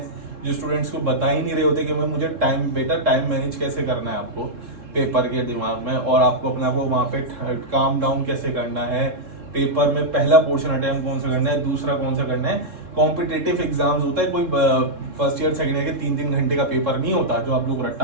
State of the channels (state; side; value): late; left; 3.7 ms